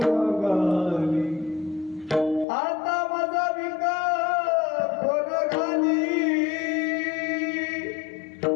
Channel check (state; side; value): drops out; right; at 2.5 s